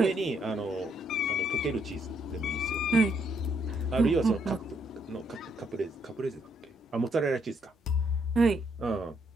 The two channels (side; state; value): both; normal; correlation 0.73